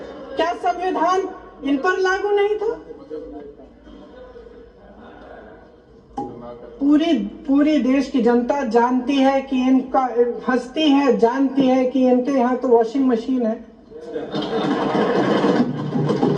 क्या संविधान इन पर लागू नहीं था? पूरी देश की जनता जानती है कि इनका, हंसती है, जानती है कि इनके यहाँ तो वॉशिंग मशीन है।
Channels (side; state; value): both; identical; correlation 1.00